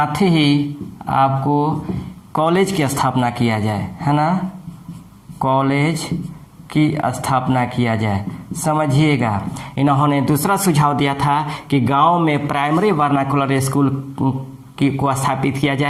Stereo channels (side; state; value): both; identical; correlation 1.00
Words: ही आपको कॉलेज की स्थापना किया जाए, है ना, कॉलेज की स्थापना किया जाए। समझिएगा, इन्होंने दूसरा सुझाव दिया था कि गांव में प्राइमरी वर्नाकुलर स्कूल को स्थापित किया